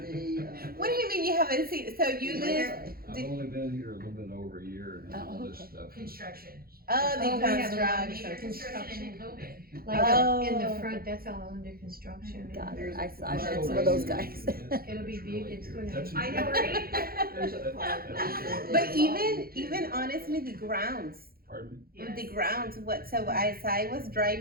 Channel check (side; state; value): left; late; 0.44 ms